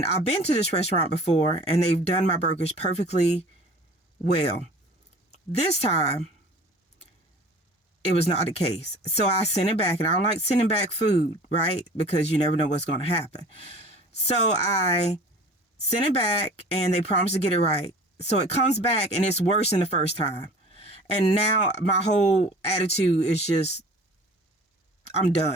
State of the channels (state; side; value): normal; both; correlation 0.44